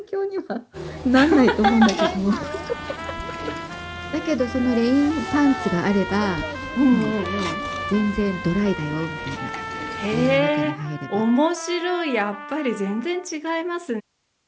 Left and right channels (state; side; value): identical; both; correlation 1.00